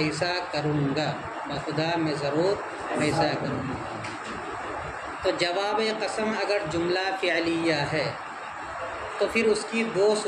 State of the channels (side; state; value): both; identical; correlation 1.00